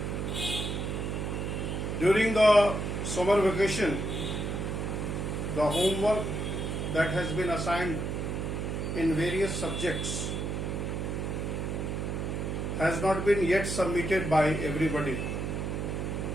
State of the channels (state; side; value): noise; right; hum, 2 dB below the sound